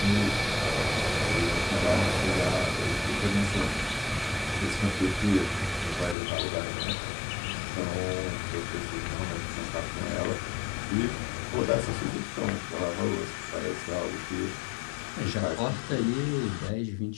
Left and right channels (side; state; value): right; drops out; at 6.2 s